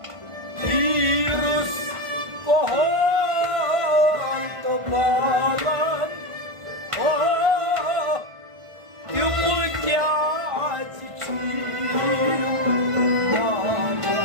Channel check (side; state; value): left; late; 1.5 ms